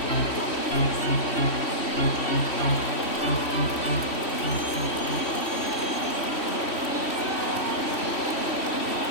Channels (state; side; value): late; right; 3.1 ms